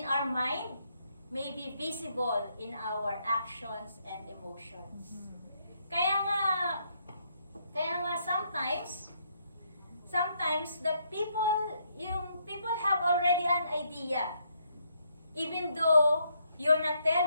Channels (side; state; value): both; inverted; correlation -0.74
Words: our mind may be visible in our actions and emotions. Kaya nga sometimes the people have already an idea. Even though you're not